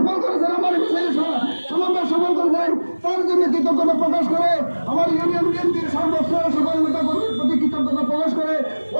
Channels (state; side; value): inverted; both; correlation -1.00